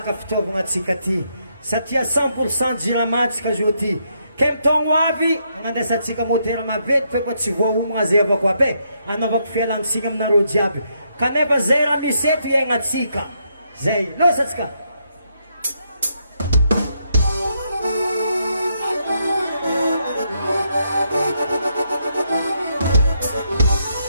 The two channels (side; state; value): both; inverted; correlation -0.77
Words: fitaovagna atsika ty satria 100% jirama tsika zo ty ke mitaogno avy agnandesatsika motera mavety fe koa tsy voaomagna zay avako aby anaovako fialantsiny aminareo jiaby kanefa zay raha misy eto iaignatsika zay losatsika